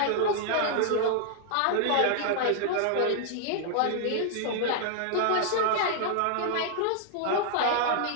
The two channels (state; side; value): different; both; correlation 0.00